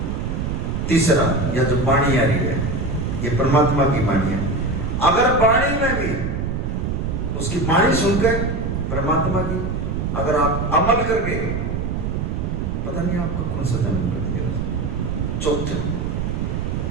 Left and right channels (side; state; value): right; noise; rumble, 2 dB below the sound